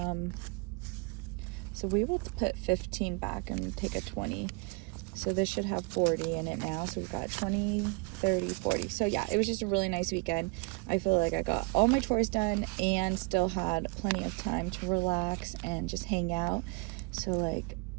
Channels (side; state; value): left; quieter; 29.3 dB